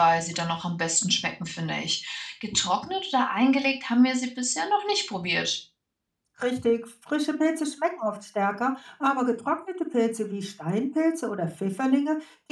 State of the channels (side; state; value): both; identical; correlation 1.00